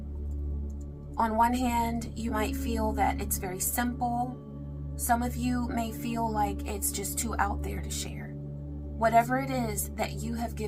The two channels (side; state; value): both; identical; correlation 1.00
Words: On one hand, you might feel that it's very simple. Some of you may feel like it's just too out there to share. Whatever it is that you have